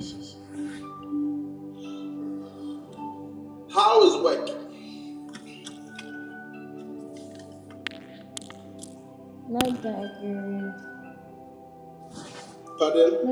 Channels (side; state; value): both; identical; correlation 1.00